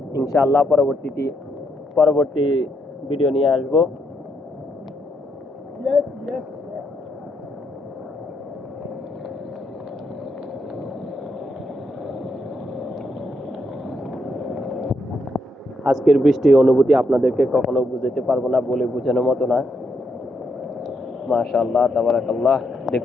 ইনশাআল্লাহ পরবর্তী ভিডিও নিয়ে আসবো। আজকের বৃষ্টির অনুভূতি আপনাদেরকে কখনো বুঝাতে পারবো না, বলে বোঝানোর মতো না। মাশাআল্লাহ, তাবারাকাল্লাহ।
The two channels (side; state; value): both; normal; correlation 0.78